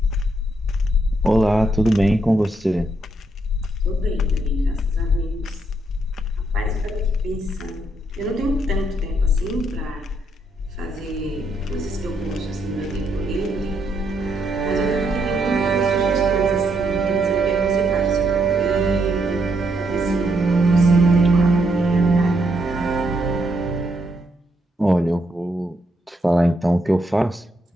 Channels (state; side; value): normal; both; correlation 0.76